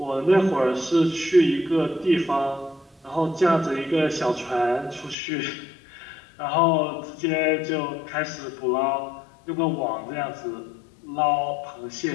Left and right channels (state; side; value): drops out; right; at 5.2 s